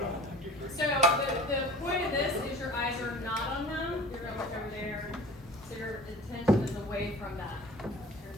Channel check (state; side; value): normal; both; correlation 0.42